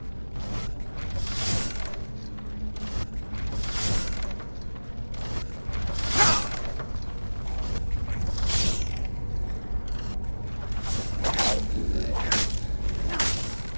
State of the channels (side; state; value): both; inverted; correlation -1.00